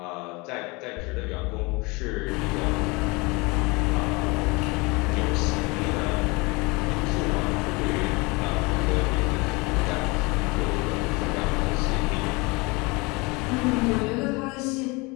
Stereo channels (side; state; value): right; quieter; 26.2 dB